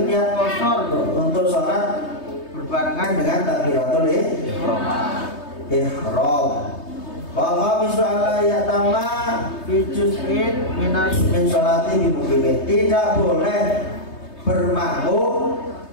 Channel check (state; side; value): late; right; 3.2 ms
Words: niat qasar untuk sholat berbarengan dengan takbiratul ihram. Wa khamisu alla yatama fi juz'in min sholati bi muqimin. Tidak boleh bermakmum